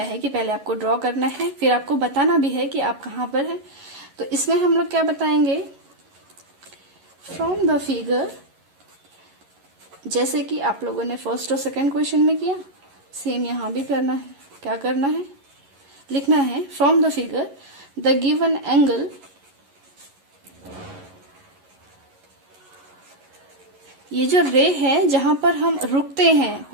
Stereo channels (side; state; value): left; late; 11 ms